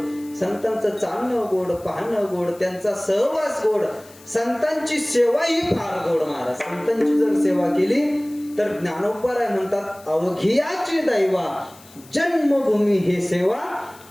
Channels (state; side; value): noise; left; hiss, 23 dB below the sound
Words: संतांचं चालणं गोड, पाहणं गोड, त्यांचा सहवास गोड, संतांची सेवा ही फार गोड. महाराज संतांची जर सेवा केली तर ज्ञानोबराय म्हणतात अवघियाची दैवा जन्मभूमी हे सेवा,